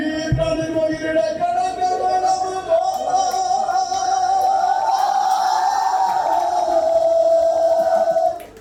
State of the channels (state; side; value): identical; both; correlation 1.00